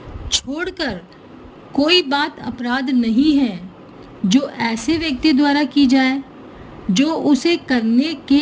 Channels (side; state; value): both; identical; correlation 1.00